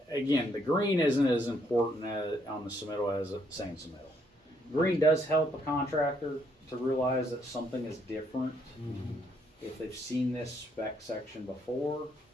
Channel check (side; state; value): both; normal; correlation 0.71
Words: again, the green isn't as important on the submittal as saying submittal. Green does help a contractor to realize that something is different if they've seen this spec section before,